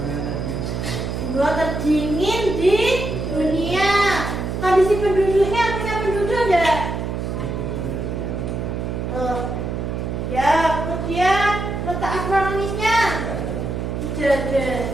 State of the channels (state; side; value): noise; right; hum, 3 dB below the sound